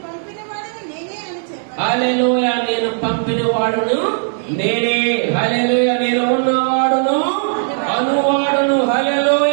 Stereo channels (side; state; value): left; silent; digital silence